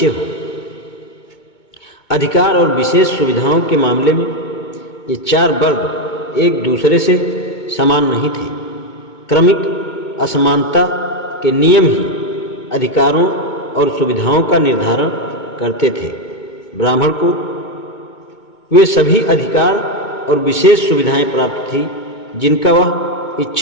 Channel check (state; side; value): late; right; 2.2 ms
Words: हो। अधिकार और विशेष सुविधाओं के मामले में ये 4 वर्ग एक दूसरे से समान नहीं थे। क्रमिक असमानता के नियम ही अधिकारों और सुविधाओं का निर्धारण करते थे। ब्राह्मण को वे सभी अधिकार और विशेष सुविधाएं प्राप्त थी जिनका वह